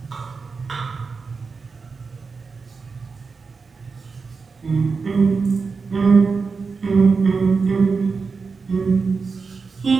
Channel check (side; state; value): left; quieter; 4.8 dB